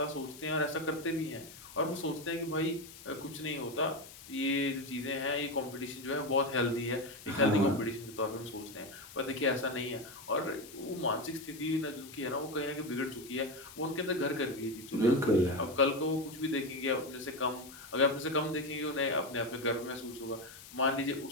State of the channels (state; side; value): noise; left; hiss, 17 dB below the sound